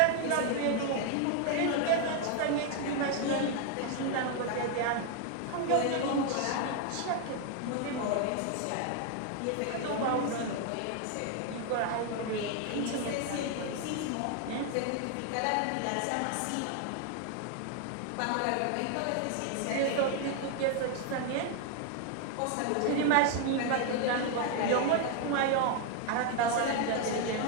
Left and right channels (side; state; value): both; different; correlation 0.00